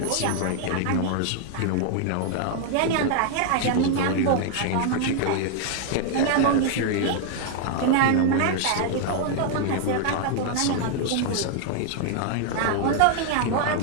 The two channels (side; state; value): both; different; correlation 0.00